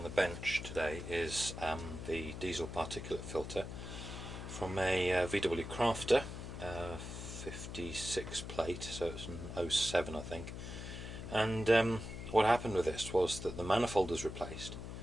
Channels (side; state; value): left; noise; hum, 8 dB below the sound